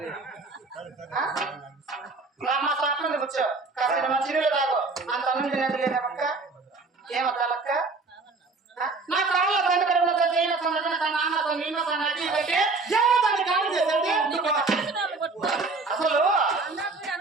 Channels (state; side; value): quieter; left; 3.8 dB